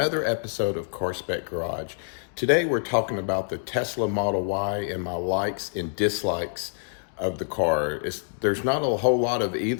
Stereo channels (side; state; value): right; silent; digital silence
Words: episode of Car Spec Garage. Today we're talking about the Tesla Model Y and my likes and dislikes of the car. There's not a whole lot of